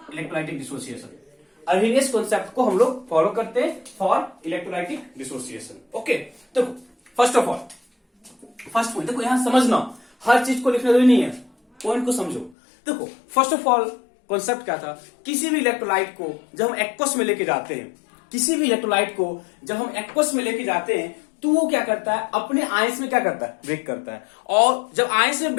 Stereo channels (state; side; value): drops out; right; at 12.6 s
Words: इलेक्ट्रोलाइटिक डिसोसिएशन। अर्हेनियस कॉन्सेप्ट को हम लोग फॉलो करते हैं फॉर इलेक्ट्रोलाइटिक डिसोसिएशन। ओके, तो first of all first point देखो, यहां समझना हर चीज को लिखना जरूरी नहीं है, पॉइंट को समझो। देखो फर्स्ट ऑफ ऑल कॉन्सेप्ट क्या था, किसी भी इलेक्ट्रोलाइट को जब हम एक्वस में लेके जाते हैं, किसी भी इलेक्ट्रोलाइट को जब हम एक्वस में लेके जाते हैं तो वो क्या करता है, अपने आयंस में क्या करता है, ब्रेक करता है। और जब आयंस में